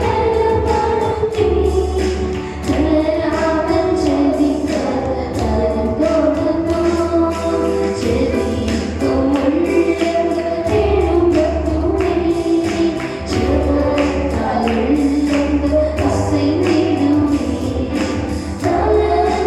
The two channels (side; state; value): right; noise; hum, 28 dB below the sound